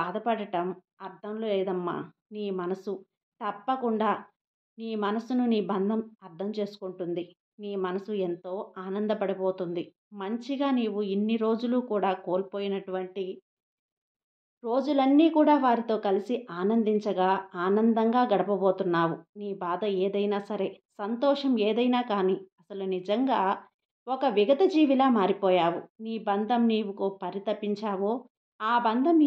అర్థం లేదమ్మా. నీ మనసు తప్పకుండా నీ మనసును నీ బంధం అర్థం చేసుకుంటుంది. నీ మనసు ఎంతో ఆనందపడిపోతుంది. మంచిగా నీవు ఇన్ని రోజులు కూడా కోల్పోయినటువంటి రోజులన్నీ కూడా వారితో కలిసి ఆనందించగా ఆనందంగా గడపబోతున్నావు. నీ బాధ ఏదైనా సరే, సంతోషం ఏదైనా కానీ అసలు నిజంగా ఒక విగత జీవిలా మారిపోయావు. నీ బంధం నీవుకో పరితపించావో ఆ బంధం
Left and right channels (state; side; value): identical; both; correlation 1.00